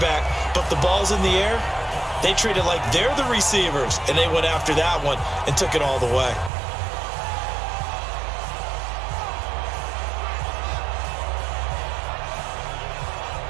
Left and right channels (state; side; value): drops out; left; at 6.5 s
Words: but if the ball's in the air, they treat it like they're the receivers, and they went after that one and took it all the way.